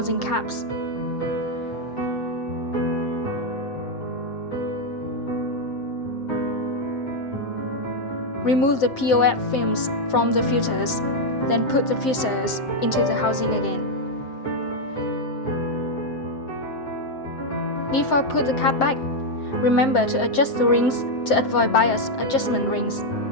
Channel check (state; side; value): late; right; 7.6 ms